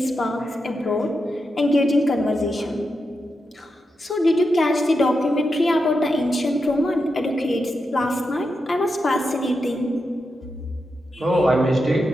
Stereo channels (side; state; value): both; normal; correlation 0.87